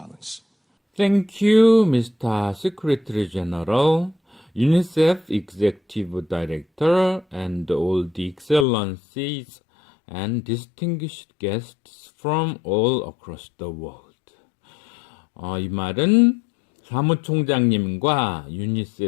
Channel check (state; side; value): drops out; right; at 8.7 s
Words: Thank you, Mr. Secretary General, UNICEF Executive Director, and all the excellencies and distinguished guests from all across the world. 이 말은 사무총장님과